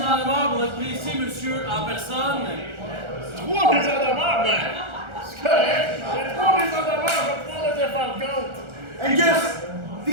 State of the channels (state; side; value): late; left; 1.4 ms